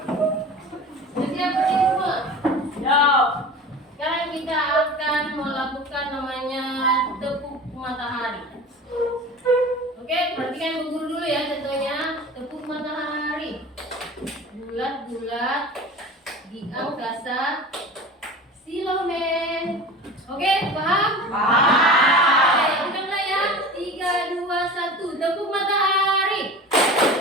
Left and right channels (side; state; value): both; normal; correlation 0.36